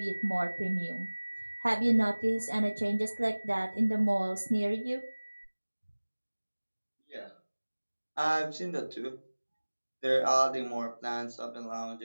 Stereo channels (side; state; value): both; inverted; correlation -1.00